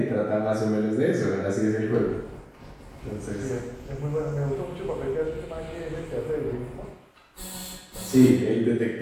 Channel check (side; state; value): both; identical; correlation 1.00